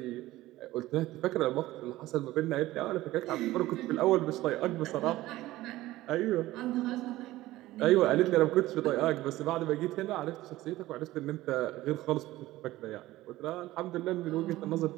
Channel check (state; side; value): quieter; left; 16.8 dB